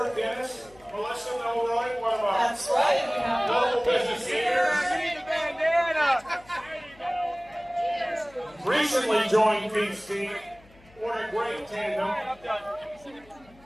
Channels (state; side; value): noise; left; hum, 26 dB below the sound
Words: Dennis, Melissa Milroy, one of our That's right. We have local business leaders? Recently joined Keith's team. What a great tandem.